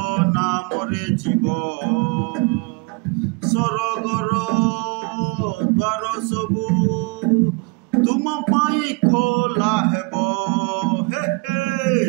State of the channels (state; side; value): quieter; left; 30.0 dB